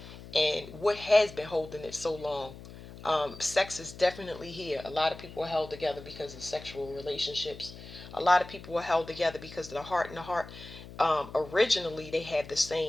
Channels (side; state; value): left; noise; hum, 15 dB below the sound